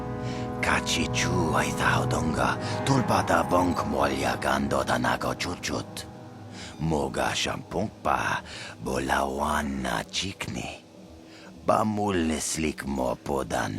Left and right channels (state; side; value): identical; both; correlation 1.00